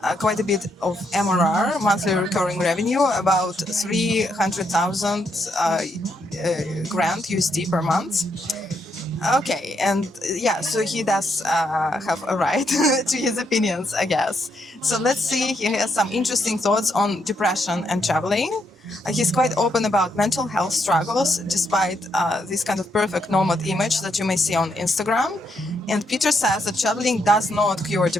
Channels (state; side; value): normal; both; correlation 0.77